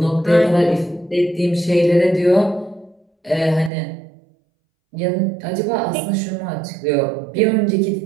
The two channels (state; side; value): drops out; left; at 3.7 s